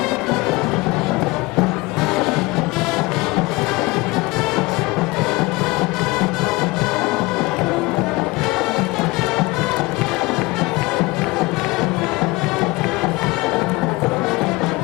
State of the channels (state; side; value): quieter; right; 23.2 dB